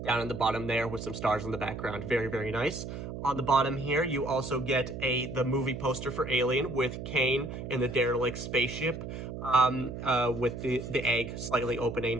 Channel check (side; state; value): right; noise; hum, 8 dB below the sound